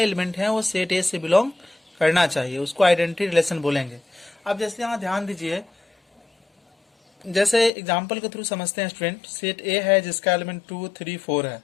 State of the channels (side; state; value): right; drops out; at 7.7 s